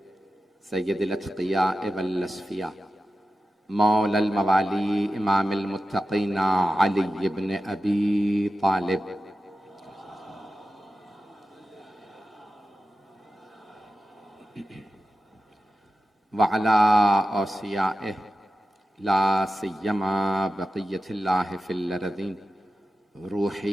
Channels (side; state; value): both; normal; correlation 0.92